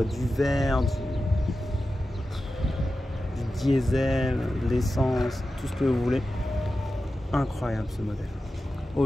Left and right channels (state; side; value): normal; both; correlation 0.93